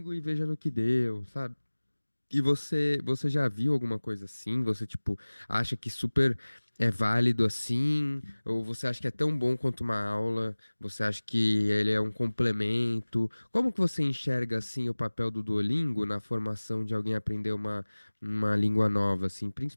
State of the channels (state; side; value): inverted; both; correlation -1.00